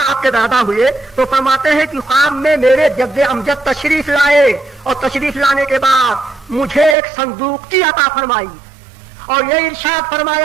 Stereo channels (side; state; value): left; drops out; at 7.0 s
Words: آپ کے دادا ہوئے، تو فرماتے ہیں کہ خواب میں میرے جد امجد تشریف لائے، اور تشریف لانے کے بعد مجھے ایک صندوق کی عطا فرمائی، اور یہ ارشاد